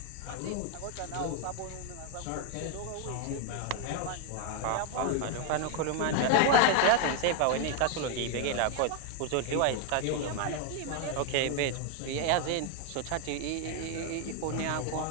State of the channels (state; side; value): different; both; correlation 0.01